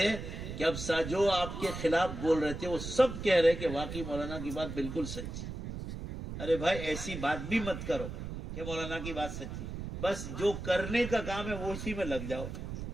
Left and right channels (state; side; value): noise; right; rumble, 7 dB below the sound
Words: کہ اب جو آپ کے خلاف بول رہے تھے وہ سب کہہ رہے کہ واقعی مولانا کی بات بالکل سچی۔ ارے بھائی ایسی بات بھی مت کرو کہ مولانا کی بات سچی، بس جو کرنے کا کام ہے وہ اسی میں لگ جاؤ۔